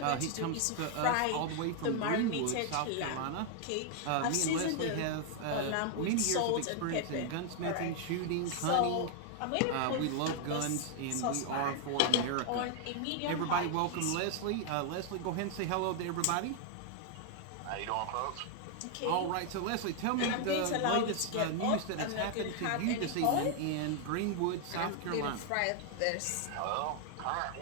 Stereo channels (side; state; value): both; different; correlation 0.00